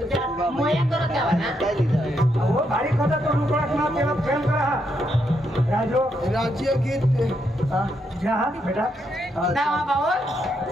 करत द्यावा ना बारीक होता तो रुपया तेव्हा प्रेम करा राजू राज्य गीत जा बेटा दावा भाऊ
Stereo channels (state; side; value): normal; both; correlation 0.79